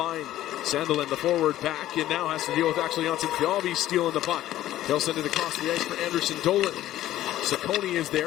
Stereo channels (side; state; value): right; quieter; 13.8 dB